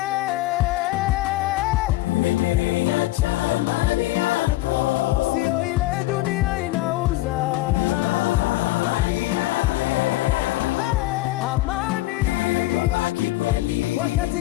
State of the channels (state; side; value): quieter; right; 17.8 dB